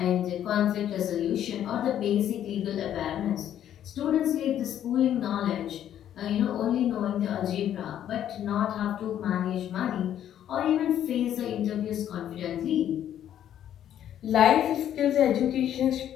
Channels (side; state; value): right; quieter; 10.7 dB